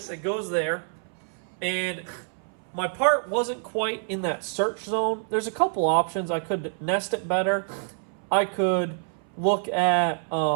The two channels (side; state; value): left; silent; 60 dB below the other